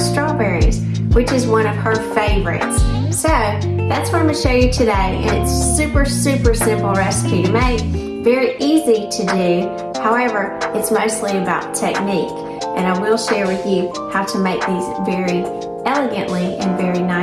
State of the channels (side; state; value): both; identical; correlation 1.00